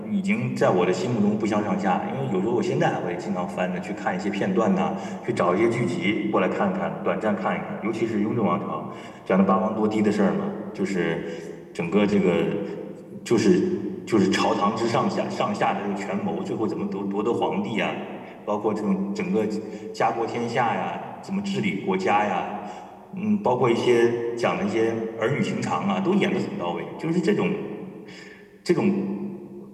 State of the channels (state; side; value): identical; both; correlation 1.00